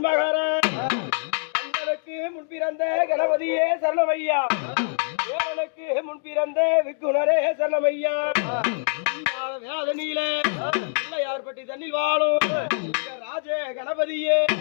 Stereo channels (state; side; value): silent; right; digital silence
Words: தங்களுக்கு முன்பிறந்த கணபதியே சரணமையா தேவனுக்கு முன்பிறந்த விக்குணரே சரணமையா வேதனியிலே பிள்ளையார்பட்டி தண்ணில் வாழும் ராஜ கணபதியே